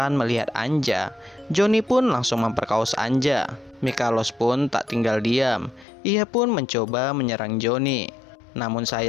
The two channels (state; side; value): drops out; right; at 5.9 s